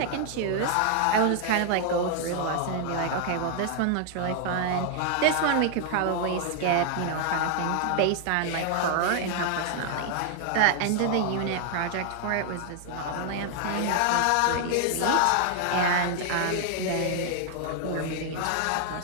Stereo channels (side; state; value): both; different; correlation 0.00